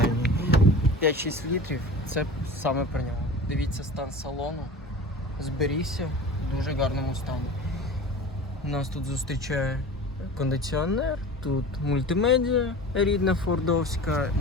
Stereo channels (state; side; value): normal; both; correlation 0.36